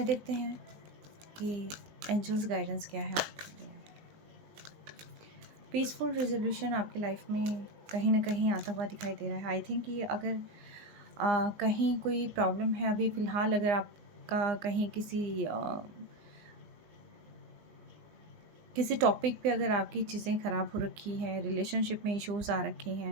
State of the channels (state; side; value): late; left; 20 ms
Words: देखते हैं कि एंजल्स गाइडेंस क्या है आपके लिए। पीसफुल रेजोल्यूशन आपकी लाइफ में कहीं ना कहीं आता हुआ दिखाई दे रहा है। आई थिंक कि अगर कहीं कोई प्रॉब्लम है अभी फ़िलहाल, अगर आपका कहीं किसी टॉपिक पे अगर आपकी चीज़ें ख़राब हो रखी हैं, रिलेशनशिप में इश्यूज़ आ रखे